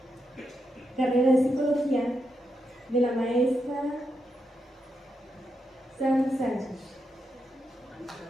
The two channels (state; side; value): normal; both; correlation 0.84